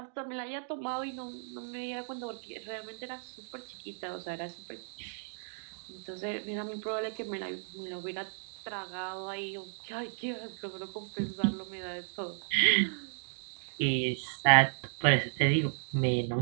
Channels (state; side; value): silent; left; digital silence